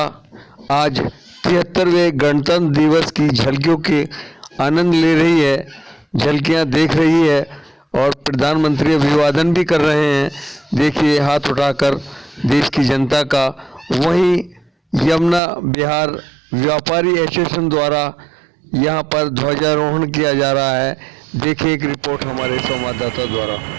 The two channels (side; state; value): left; drops out; at 15.4 s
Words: आज 73वें गणतंत्र दिवस की झलकियों के आनंद ले रही है, झलकियां देख रही है और प्रधानमंत्री अभिवादन भी कर रहे हैं। देखिए हाथ उठाकर देश की जनता का। वहीं यमुना बिहार व्यापारी एसोसिएशन द्वारा यहां पर ध्वजारोहण किया जा रहा है। देखिए एक रिपोर्ट हमारे संवाददाता द्वारा।